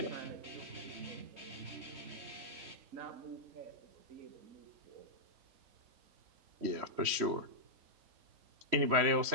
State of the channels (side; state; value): left; late; 3.1 ms